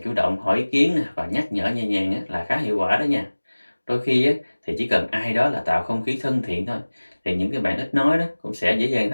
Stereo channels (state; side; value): inverted; both; correlation -1.00